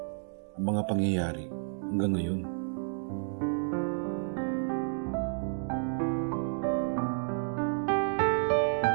ang mga pangyayari hanggang ngayon.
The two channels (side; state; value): left; silent; 57 dB below the other